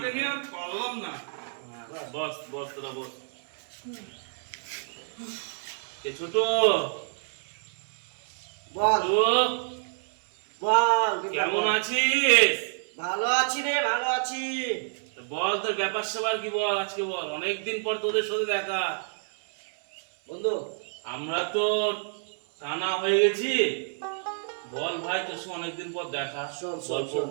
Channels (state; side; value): silent; left; 59 dB below the other